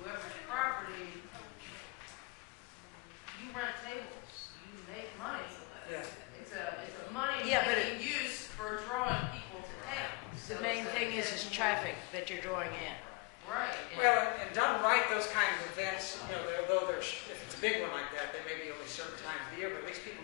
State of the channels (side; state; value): right; quieter; 27.5 dB